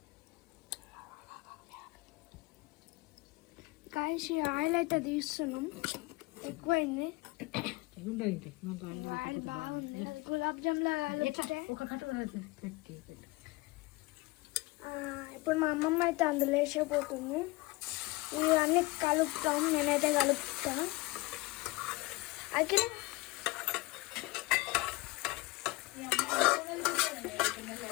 గాయ్స్, ఈ ఆయిల్ అయితే తీస్తున్నాం. ఎక్కువైంది ఆయిల్, బాగుంది. అది గులాబ్ జామ్లా ఇప్పుడు మా అమ్మమ్మ అయితే అందులో వేసేపోతుంది. ఇవన్నీ కలుపుతాం. నేనైతే కలుపుతా. అఖిల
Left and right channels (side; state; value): right; quieter; 22.9 dB